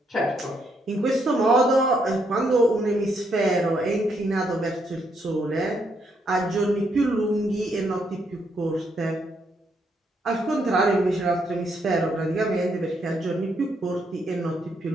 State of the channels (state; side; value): normal; both; correlation 0.75